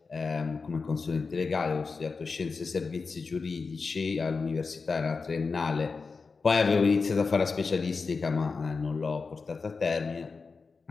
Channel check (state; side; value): quieter; right; 4.6 dB